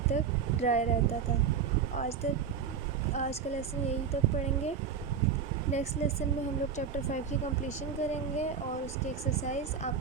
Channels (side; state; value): left; quieter; 6.7 dB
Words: تک ڈرائی رہتا تھا. آج کا لیسن یہی تک پڑھیں گے. نیکسٹ لیسن میں ہم لوگ چیپٹر 5 کی کمپلیشن کریں گے اور اس کی ایکسرسائز آپ